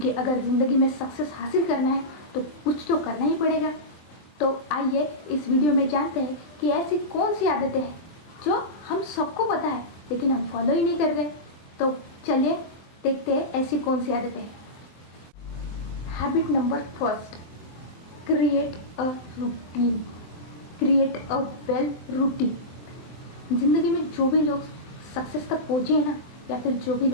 अगर ज़िंदगी में सक्सेस हासिल करना है तो कुछ तो करना ही पड़ेगा। तो आइए इस वीडियो में जानते हैं कि ऐसी कौन सी आदतें हैं जो हम सबको पता है लेकिन हम फॉलो ही नहीं कर रहे। तो चलिए देखते हैं ऐसी कौन सी आदतें हैं। Habit number first, create a routine. Create a well routine. ज़िंदगी में जो भी लोग सक्सेस तक पहुँचे हैं ना, या फिर जो भी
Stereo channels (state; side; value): late; right; 23 ms